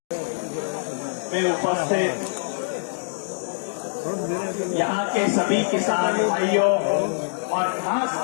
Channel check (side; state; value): right; silent; digital silence